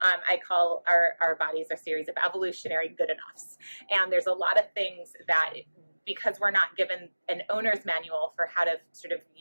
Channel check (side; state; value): both; inverted; correlation -1.00